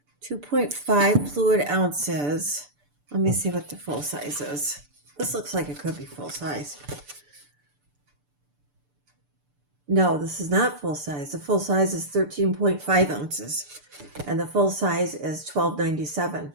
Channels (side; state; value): left; late; 6.8 ms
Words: 2.5 fluid ounces. Let me see what the full size is. This looks like it could be full size. No, this is not full size. The full size is 13.5 ounces. And the full size is $12.97.